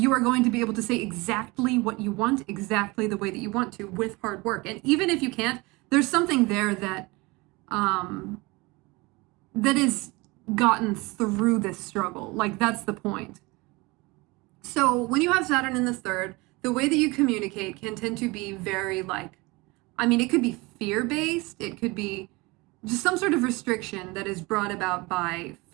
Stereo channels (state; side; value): quieter; left; 24.2 dB